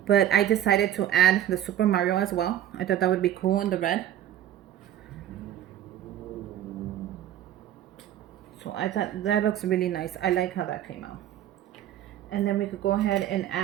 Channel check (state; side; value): quieter; left; 11.6 dB